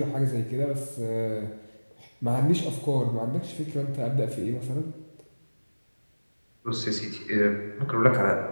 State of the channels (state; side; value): inverted; both; correlation -1.00